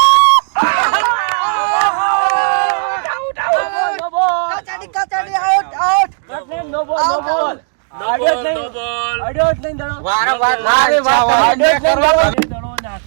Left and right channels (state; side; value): silent; left; digital silence